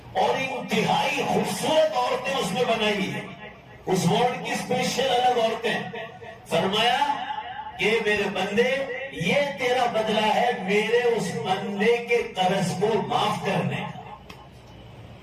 اور انتہائی خوبصورت عورتیں اس میں بنائی ہیں، اس وارڈ کی اسپیشل الگ عورتیں۔ فرمایا کہ میرے بندے یہ تیرا بدلہ ہے میرے اس بندے کے قرض کو معاف کرنے کا۔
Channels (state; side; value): identical; both; correlation 1.00